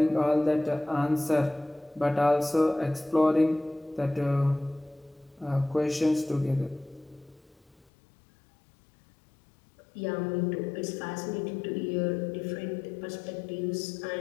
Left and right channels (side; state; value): right; drops out; at 7.9 s